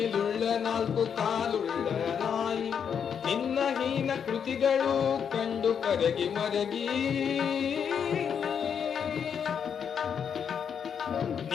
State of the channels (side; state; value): right; quieter; 7.5 dB